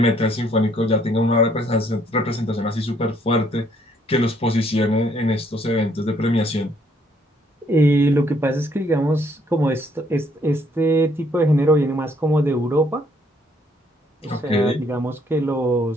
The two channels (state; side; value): normal; both; correlation 0.66